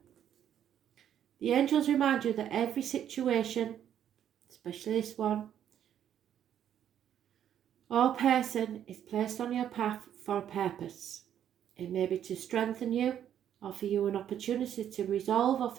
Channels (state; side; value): quieter; left; 9.9 dB